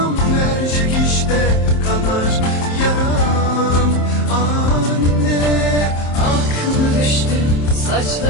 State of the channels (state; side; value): late; right; 27 ms